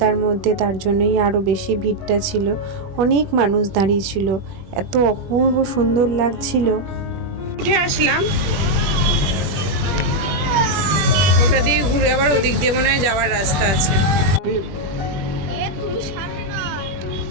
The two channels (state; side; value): late; left; 21 ms